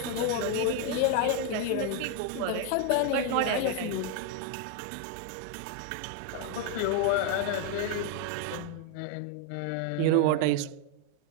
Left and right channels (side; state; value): both; different; correlation 0.00